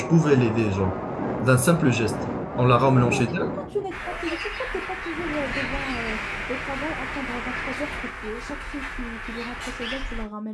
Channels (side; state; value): both; identical; correlation 1.00